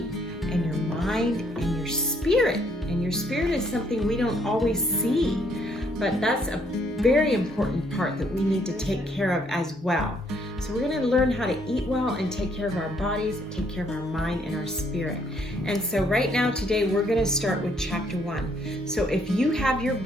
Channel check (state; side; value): normal; both; correlation 0.68